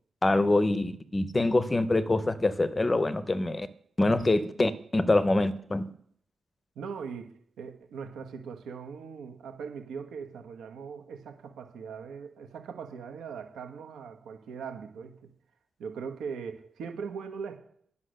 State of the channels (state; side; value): normal; both; correlation 0.95